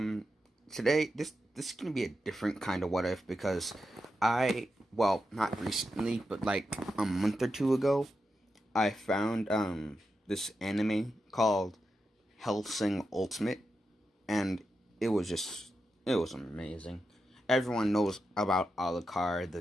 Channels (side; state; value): both; normal; correlation 0.88